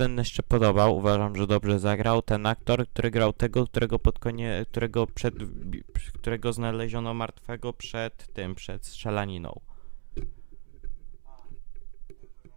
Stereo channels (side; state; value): left; silent; 59 dB below the other